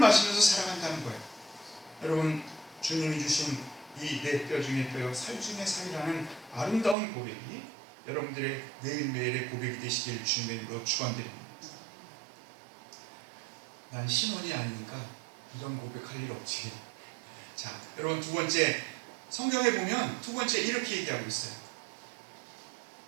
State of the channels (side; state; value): left; drops out; at 7.0 s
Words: 살아간다는 거예요. 여러분, 주님이 주신 이 내 뼈 중에 뼈요 살 중에 살이라는 아름다운 고백이 여러분들의 매일매일의 고백이 되시길 주님의 이름으로 축원드립니다. 난 신혼이 아니니까 이런 고백할 일 없지. 자, 여러분, 두 번째, 성경에 보면 두 번째 이렇게 얘기하고 있어요.